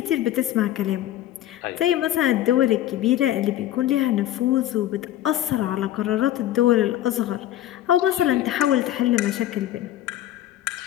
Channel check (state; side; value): quieter; right; 13.1 dB